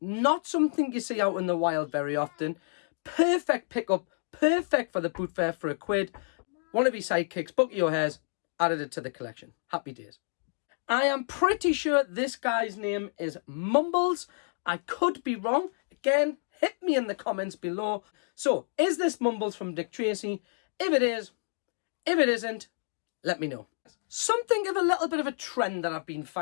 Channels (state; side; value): silent; right; digital silence